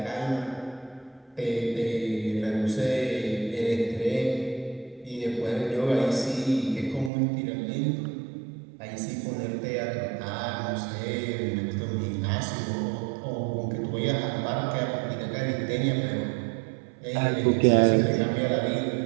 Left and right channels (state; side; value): drops out; left; at 7.1 s